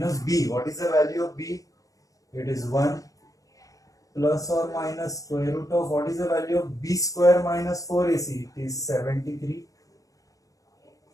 b. What is the value of b? It is 1 plus or minus square root of, what is the value of b square minus 4ac? It is 73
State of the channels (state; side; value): late; right; 0.17 ms